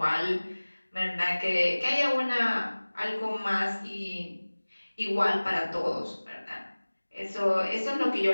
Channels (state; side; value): inverted; both; correlation -1.00